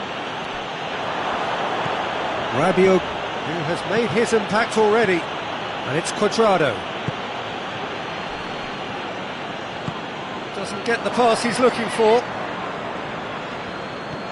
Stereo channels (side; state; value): both; identical; correlation 1.00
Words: Rabiot, who has made his impact already. And it's Cuadrado. Doesn't get the pass he's looking for.